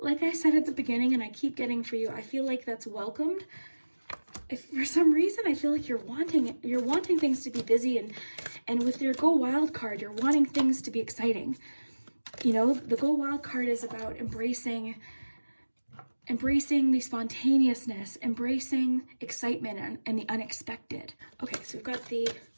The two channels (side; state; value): both; inverted; correlation -1.00